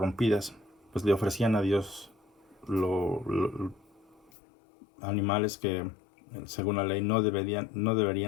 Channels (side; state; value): right; drops out; at 4.3 s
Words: pues le ofrecían a Dios animales que según la ley no